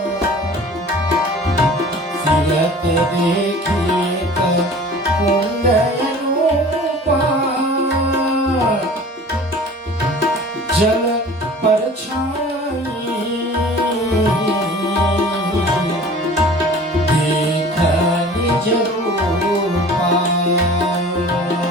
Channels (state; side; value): normal; both; correlation 0.44